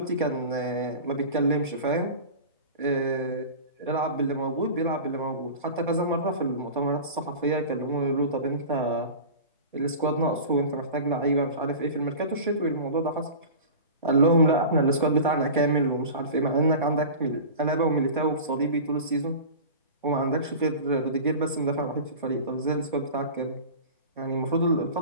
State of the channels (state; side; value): inverted; both; correlation -0.34